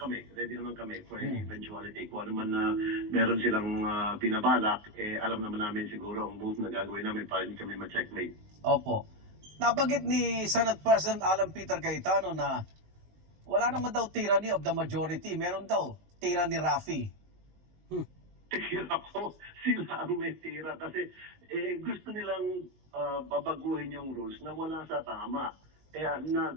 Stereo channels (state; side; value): late; left; 19 ms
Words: for any eventuality. Kung ano man na meron silang binabalak, alam naman namin siguro ang move na gagawin namin para hindi kami ma-checkmate. Opo. Nabanggit ni Senate President Alan Peter Cayetano na wala naman daw tyranny of the majority. Meron daw tyranny Raffy. Tira ko, sila ang may tira kasi gusto nilang babaguhin yung rules na wala sa tama. Kaya